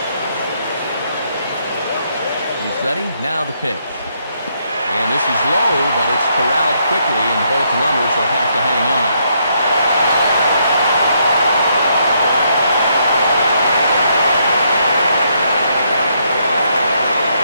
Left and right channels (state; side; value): inverted; both; correlation -0.74